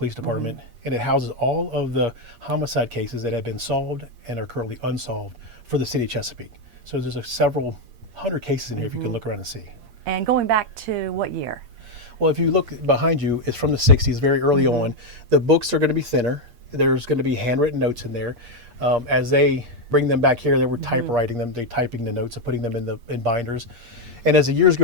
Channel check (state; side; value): late; left; 8.5 ms